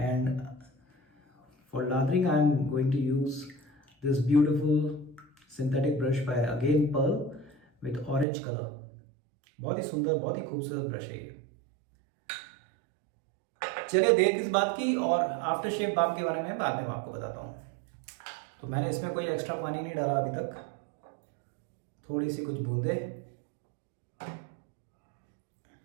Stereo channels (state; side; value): drops out; left; at 8.2 s